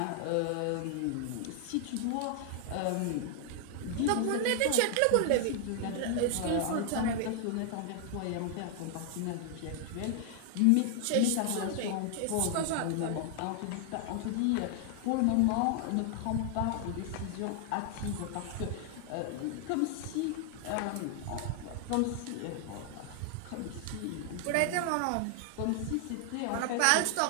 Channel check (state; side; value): different; both; correlation 0.00